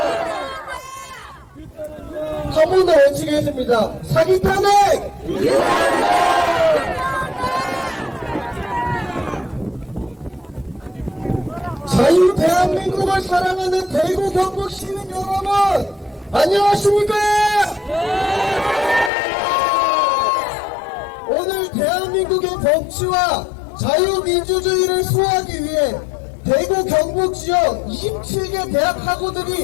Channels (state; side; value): drops out; right; at 19.1 s